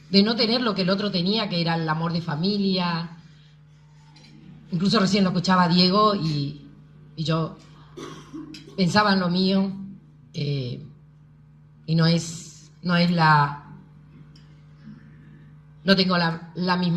tener lo que el otro tenía, que era el amor de familia. Incluso recién lo escuchaba a Diego y yo pensaba en lo mío, y no tengo la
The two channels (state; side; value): identical; both; correlation 1.00